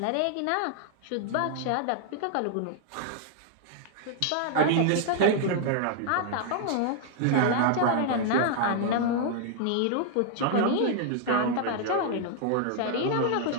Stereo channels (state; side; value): different; both; correlation 0.00